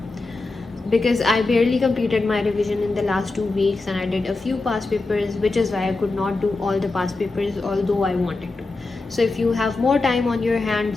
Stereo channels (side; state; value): right; quieter; 3.4 dB